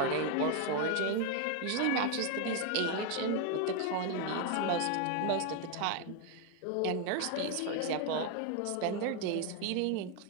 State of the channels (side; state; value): both; different; correlation 0.01